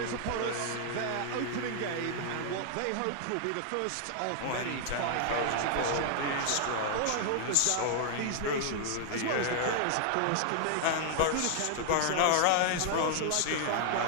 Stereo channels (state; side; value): different; both; correlation 0.00